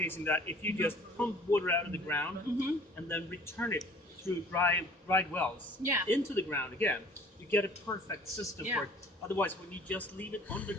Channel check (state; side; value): normal; both; correlation 0.51